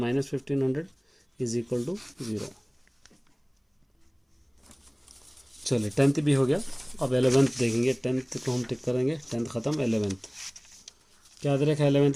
1500 is equal to 0। चलिए 10th भी हो गया, अब 11th देखेंगे। 10th को हम टिक करेंगे, 10th ख़त्म। 11th क्या दे रखा है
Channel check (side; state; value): both; identical; correlation 1.00